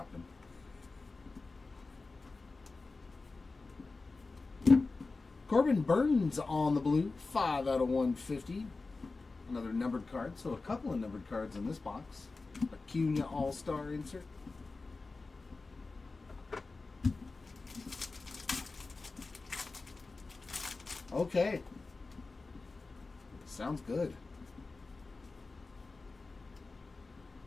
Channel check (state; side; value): quieter; right; 3.7 dB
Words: Corbin Burns on the blue, 5 out of 150. Another numbered card, so a couple of numbered cards in this box. Acuna All-Star insert. Okay. Sounds good.